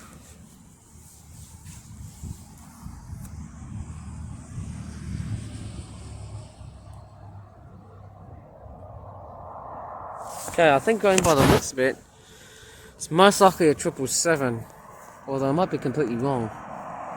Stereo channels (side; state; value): both; identical; correlation 1.00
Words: Okay, I think going by the looks of it, it's most likely a 777, although I might be completely wrong.